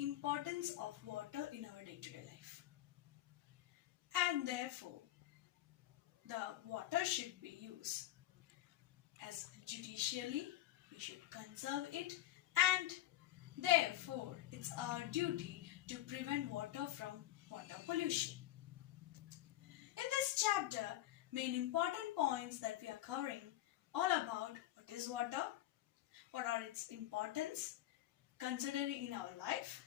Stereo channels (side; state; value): right; quieter; 14.7 dB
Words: importance of water in our day-to-day life. And therefore, the water should be used as judicially. We should conserve it, and therefore it's our duty to prevent water from water pollution. In this chapter, main important points that we are covering all about what is water, what are its importance considering in our life,